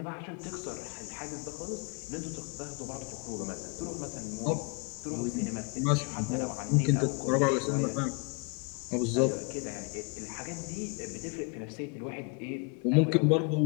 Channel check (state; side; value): quieter; right; 34.6 dB